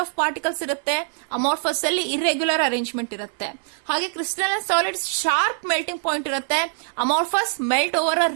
of particles ಇರುತ್ತೆ, ಅಮಾರ್ಫಸ್ ಅಲ್ಲಿ ಇರ್ರೆಗ್ಯುಲರ್ ಅರೇಂಜ್ಮೆಂಟ್ ಇರುತ್ತೆ. ಹಾಗೆ crystalline solids sharp melting point ಇರುತ್ತೆ, amorphous melt over a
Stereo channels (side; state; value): left; silent; digital silence